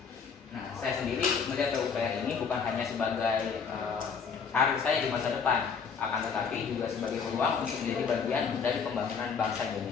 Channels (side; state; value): right; quieter; 6.0 dB